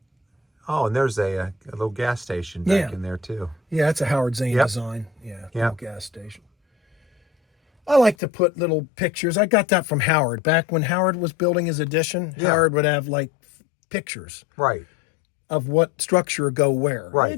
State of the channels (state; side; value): drops out; right; at 8.2 s